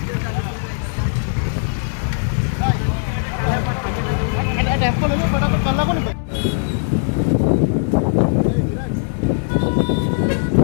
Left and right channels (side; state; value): right; silent; 63 dB below the other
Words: टेम्पो ले लो फटाफट, कल को नहीं।